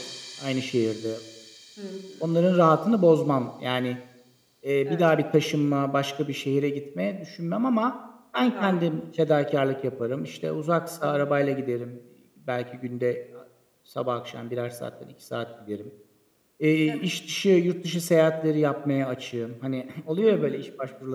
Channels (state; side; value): identical; both; correlation 1.00